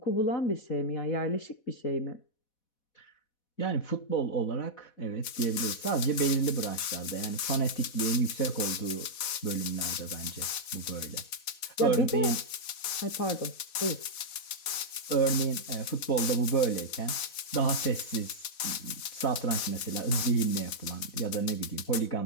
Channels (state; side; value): late; right; 4.1 ms